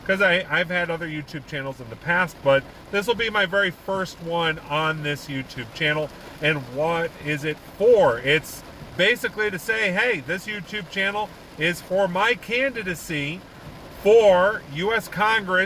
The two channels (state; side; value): identical; both; correlation 1.00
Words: I've had other YouTube channels in the past, but this will be my very first one on this YouTube channel. And what is it for? It's basically to say, hey, this YouTube channel is for my candidacy for U.S.